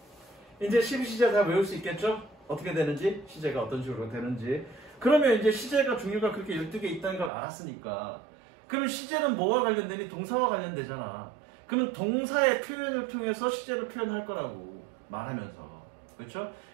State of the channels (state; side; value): drops out; left; at 7.3 s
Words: 이제 12시제 다 외울 수 있겠죠? 어떻게 되는지, 시제가 어떤 식으로 되는지. 그러면 이제 시제가 종류가 그렇게 12개 있다는 걸 알았으니까, 그럼 시제는 뭐와 관련되니? 동사와 관련되잖아. 그럼 동사의 표현을 통해서 시제를 표현할 거라고 말하면서, 그렇죠?